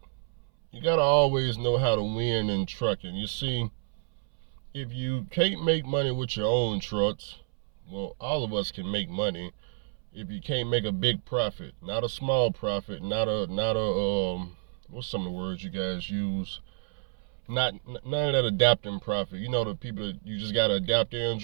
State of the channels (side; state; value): left; silent; 58 dB below the other